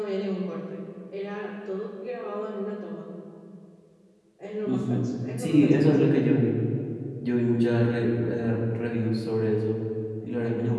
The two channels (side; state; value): both; identical; correlation 1.00